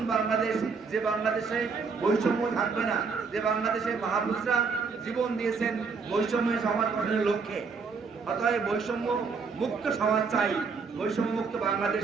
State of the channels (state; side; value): quieter; left; 5.0 dB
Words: বাংলাদেশ, যে বাংলাদেশে বৈষম্য থাকবে না, যে বাংলাদেশে মহাপুরুষরা জীবন দিয়েছেন বৈষম্য সমাজ গঠনের লক্ষ্যে। অতএব বৈষম্য মুক্ত সমাজ চাই, বৈষম্য মুক্ত বাংলাদেশ